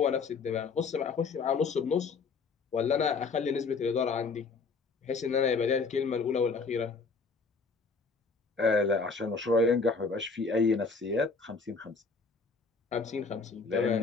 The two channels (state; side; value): quieter; right; 4.6 dB